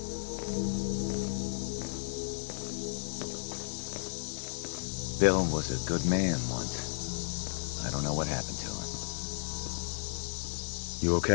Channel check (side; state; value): right; silent; digital silence